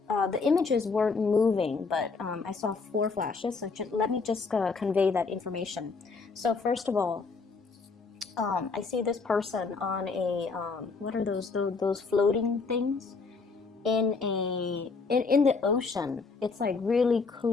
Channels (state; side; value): quieter; right; 4.5 dB